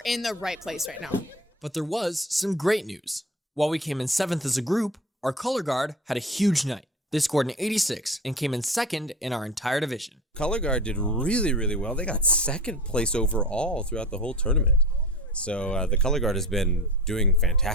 in the right place right now. But there was some great news. While we came in 7th as a group, our color guard had a huge night. They scored an 86 and came in 2nd in our entire division. Color Guard did really, really well. They got 2nd place overall throughout the whole tournament. So the Color Guard has been doing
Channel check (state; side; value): normal; both; correlation 0.34